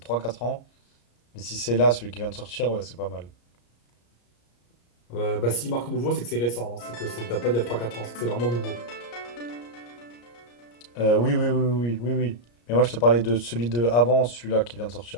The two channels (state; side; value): late; right; 34 ms